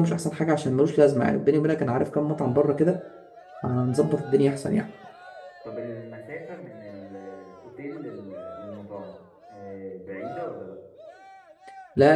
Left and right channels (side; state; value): both; identical; correlation 1.00